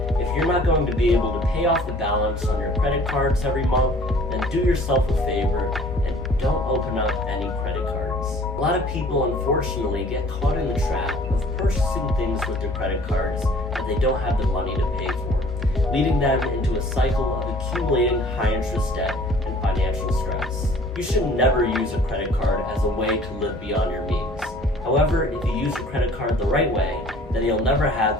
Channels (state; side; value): normal; both; correlation 0.52